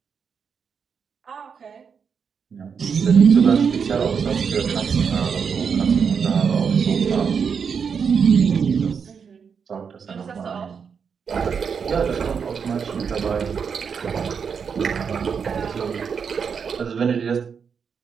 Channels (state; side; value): quieter; left; 6.4 dB